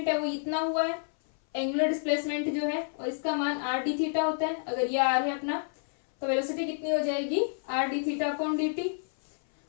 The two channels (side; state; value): right; silent; 58 dB below the other